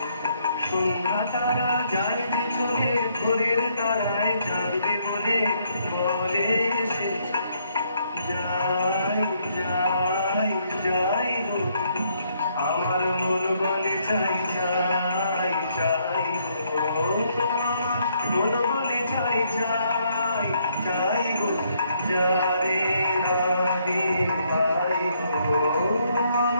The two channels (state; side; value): inverted; both; correlation -0.71